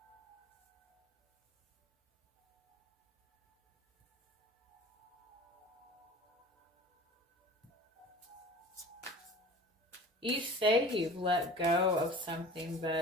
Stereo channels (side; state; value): both; normal; correlation 0.41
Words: You say you've let go of something,